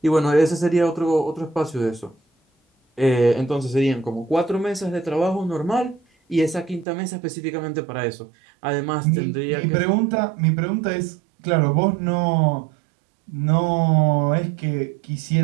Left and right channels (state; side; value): drops out; left; at 6.9 s